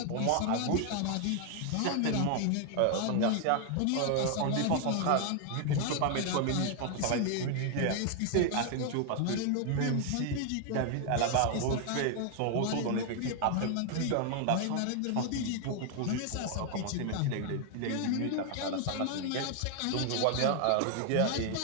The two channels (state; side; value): different; both; correlation 0.00